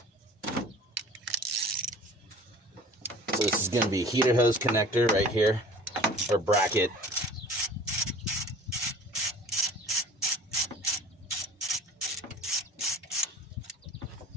So this is going to be a heater hose connector right here, or bracket.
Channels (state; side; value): normal; both; correlation 0.44